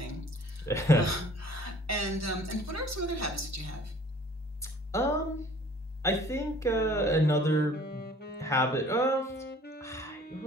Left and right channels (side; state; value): both; normal; correlation 0.52